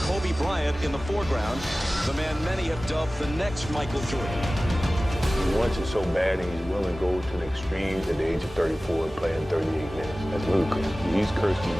Kobe Bryant in the foreground, the man many have dubbed the next Michael Jordan. He wants it so bad and he's willing to go to the extreme at the age of 34 playing 38 minutes. That's ludicrous. He's cursed as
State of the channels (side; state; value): both; normal; correlation 0.97